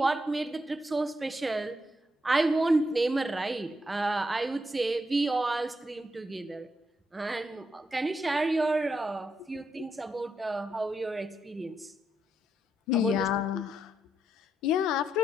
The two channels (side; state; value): both; normal; correlation 0.81